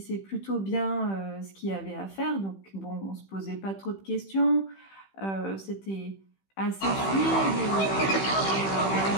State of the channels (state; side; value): late; right; 15 ms